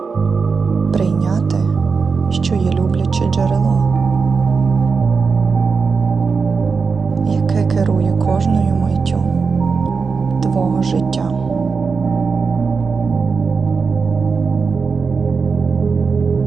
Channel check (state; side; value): quieter; left; 5.1 dB